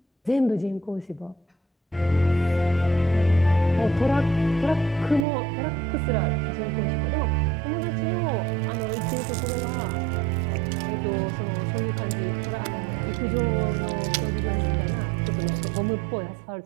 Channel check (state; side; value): drops out; left; at 5.2 s